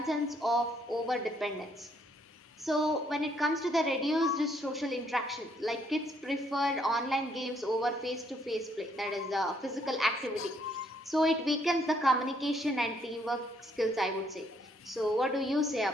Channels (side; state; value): both; normal; correlation 0.69